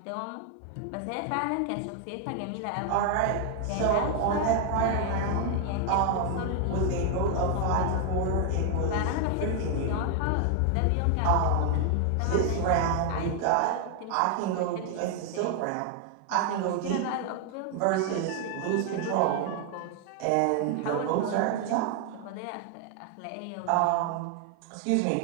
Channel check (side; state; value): both; different; correlation 0.00